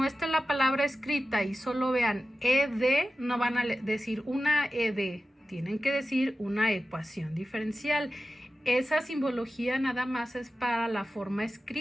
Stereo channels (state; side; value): normal; both; correlation 0.94